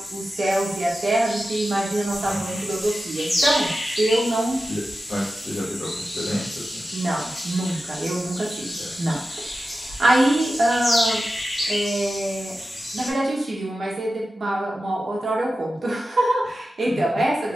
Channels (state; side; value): normal; both; correlation 0.93